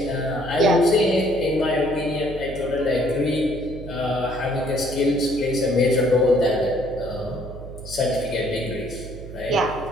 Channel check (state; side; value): noise; right; hum, 12 dB below the sound